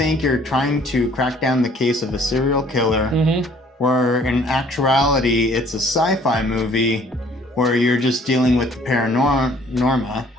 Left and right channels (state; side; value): normal; both; correlation 0.57